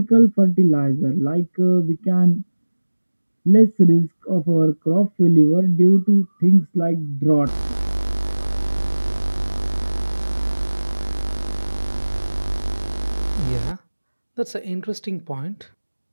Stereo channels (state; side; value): inverted; both; correlation -1.00